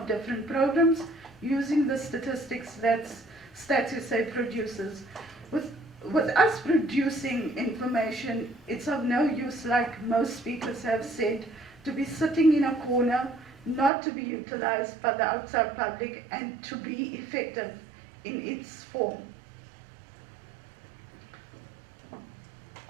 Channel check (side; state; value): left; drops out; at 13.9 s